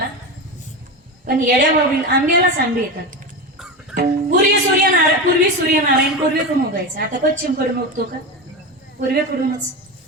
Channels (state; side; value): normal; both; correlation 0.20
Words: पण येड्या बाबळी आंब्यालाच आंबे येतात. पूर्वी सूर्यनारायण पूर्वेकडून उगायचं, आता पश्चिमकडून उगतो का? पूर्वेकडूनच.